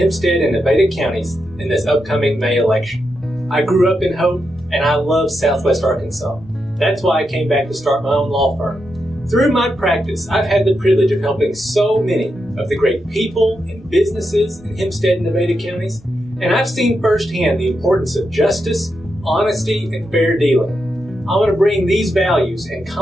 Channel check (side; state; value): both; normal; correlation 0.85